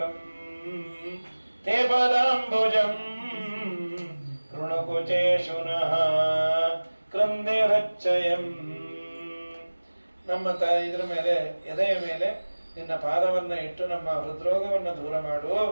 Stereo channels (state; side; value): inverted; both; correlation -1.00